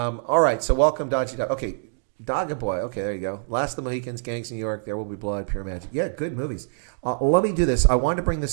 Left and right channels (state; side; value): silent; left; digital silence